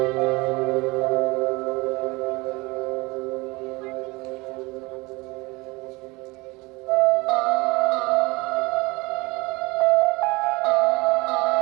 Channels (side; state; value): left; quieter; 24.2 dB